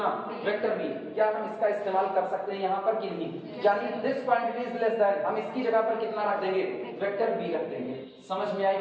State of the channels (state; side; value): identical; both; correlation 1.00